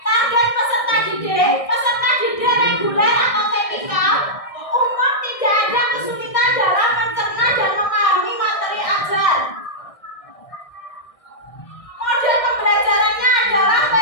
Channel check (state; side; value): late; right; 1.6 ms